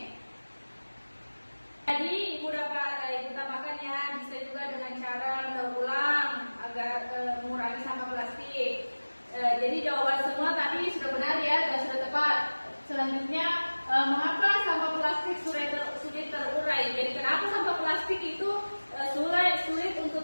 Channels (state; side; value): inverted; both; correlation -1.00